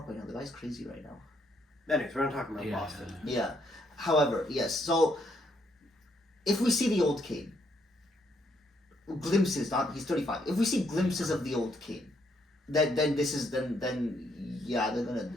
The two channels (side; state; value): both; normal; correlation 0.73